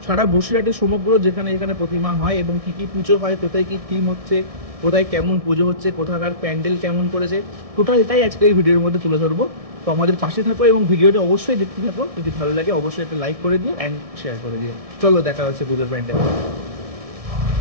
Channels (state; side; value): late; left; 1.7 ms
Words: সারা বসিরহাটের সমগ্র যেখানে যেখানে প্রতিমা হয় এবং কী কী পুজো হয়, কোথায় কী থিম হচ্ছে, কোথায় কেমন পুজো হচ্ছে, কোথাকার প্যান্ডেল কেমন করেছে, টোটালটাই আজকে এই ভিডিওর মধ্যে তুলে ধরবো। তো আমাদের পাশে থাকো এবং ভিডিওটা অবশ্যই দেখতে থাকো। যদি ভালো লাগে অবশ্যই একটা লাইক করে দিও অ্যান্ড শেয়ার করে দিও। চলো দেখা হচ্ছে পুজোর প্যান্ডেল।